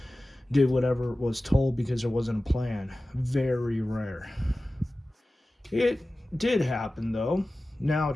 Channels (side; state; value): both; normal; correlation 0.96